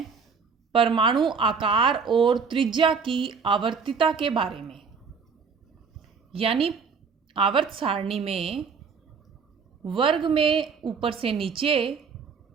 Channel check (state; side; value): quieter; left; 5.6 dB